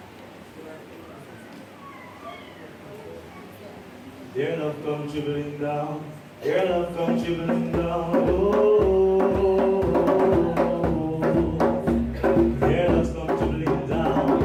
Dear love come trickling down, dear love come trickling down, oh, dear love come trickling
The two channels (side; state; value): both; identical; correlation 1.00